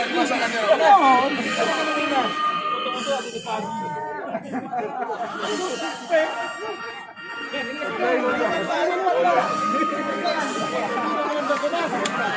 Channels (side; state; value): both; identical; correlation 1.00